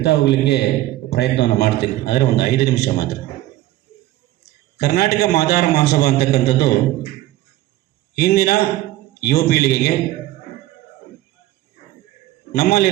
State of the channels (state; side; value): quieter; left; 15.6 dB